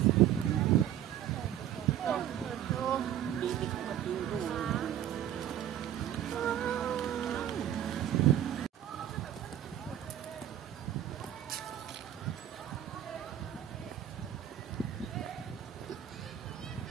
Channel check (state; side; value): quieter; left; 11.1 dB